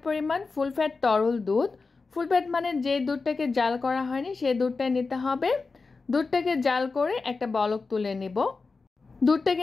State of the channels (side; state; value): right; quieter; 4.2 dB